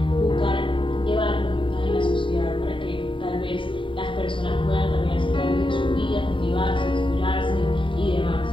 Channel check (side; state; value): right; late; 0.25 ms